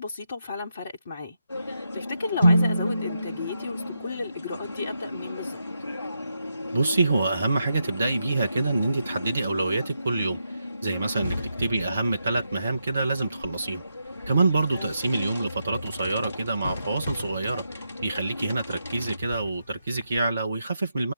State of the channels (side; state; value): both; inverted; correlation -0.84